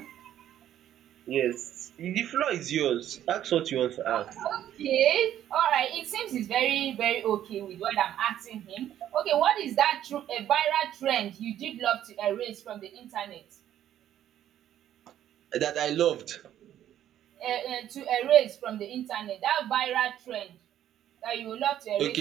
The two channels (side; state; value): left; quieter; 11.3 dB